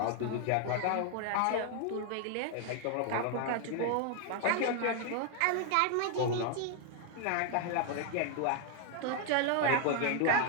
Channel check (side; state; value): both; different; correlation 0.00